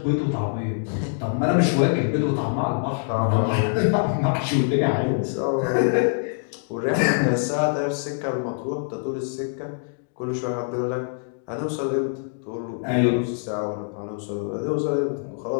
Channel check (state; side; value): silent; right; digital silence